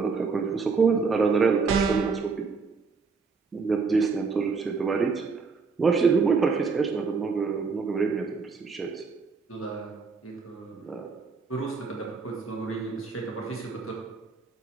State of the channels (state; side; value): quieter; left; 4.8 dB